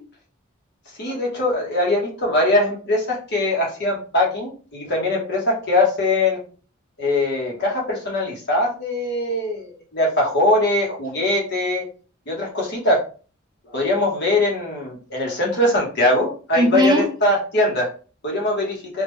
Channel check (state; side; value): normal; both; correlation 0.18